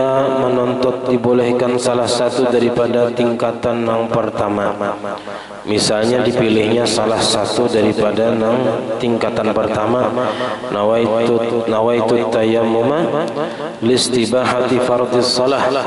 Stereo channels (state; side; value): identical; both; correlation 1.00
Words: menuntut dibolehkan salah satu daripada tingkatan yang pertama, misalnya dipilihnya salah satu daripada tingkatan pertama, nawaitu tayammuma listibahati fardhis shalah.